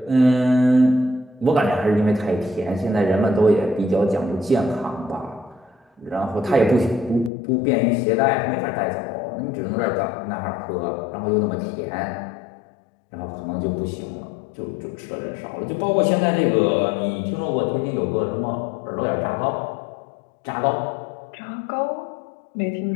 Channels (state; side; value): drops out; right; at 7.3 s